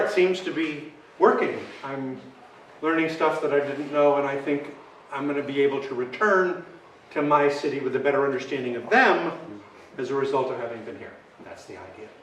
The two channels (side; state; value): both; identical; correlation 1.00